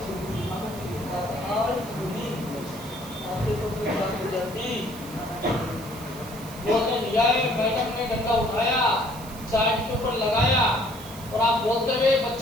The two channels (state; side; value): noise; right; hiss, 17 dB below the sound